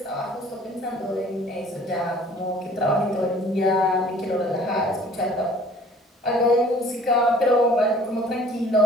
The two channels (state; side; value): normal; both; correlation 0.52